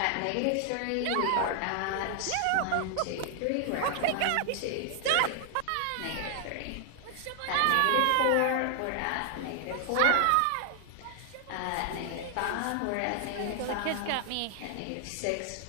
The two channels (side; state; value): both; different; correlation 0.00